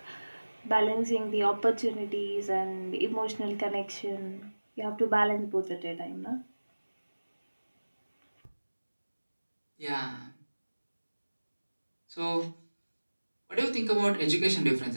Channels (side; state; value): both; inverted; correlation -1.00